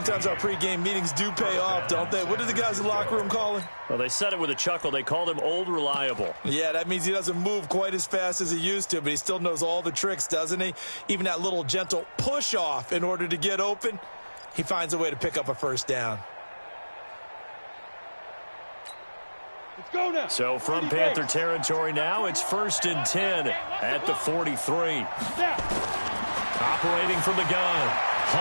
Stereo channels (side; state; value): both; inverted; correlation -1.00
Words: our pregame meetings do pay off, don't they? What do the guys in the locker room call him? Well, they said it with a chuckle. They called him Old Reliable. Yeah, that means he doesn't move quite as fast as he used to, but he still knows all the tricks, doesn't he? Even that little gentle push-off in order to get open, he finds a way to pick up a 1st down. Let's go now. So from Panther territory now, it's 1st and 10 at the 43. Snap. Operating from the gun,